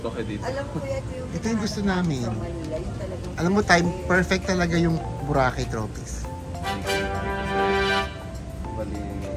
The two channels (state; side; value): identical; both; correlation 1.00